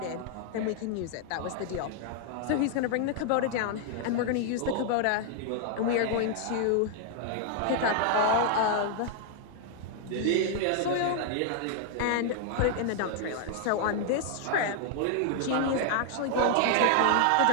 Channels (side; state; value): both; different; correlation 0.00